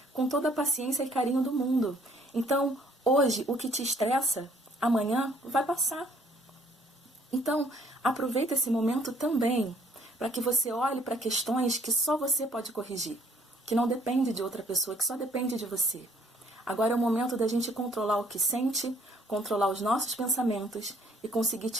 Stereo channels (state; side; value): normal; both; correlation 0.62